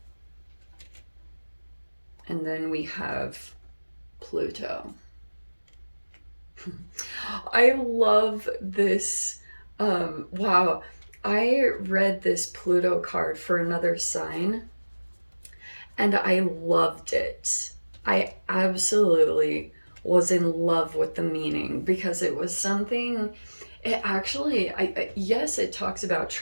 And then we have Pluto. I love this. Wow. I read this Pluto card for another sign and I loved it. I absolutely was in love with the meaning because it was something, it actually, yes, it talks about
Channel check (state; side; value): inverted; both; correlation -1.00